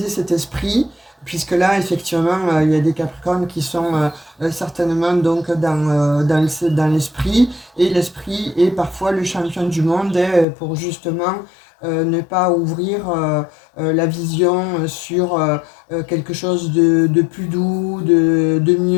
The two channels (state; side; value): drops out; right; at 10.5 s